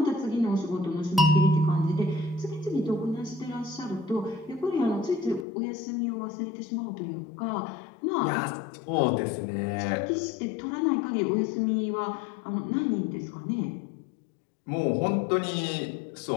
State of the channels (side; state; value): right; drops out; at 5.5 s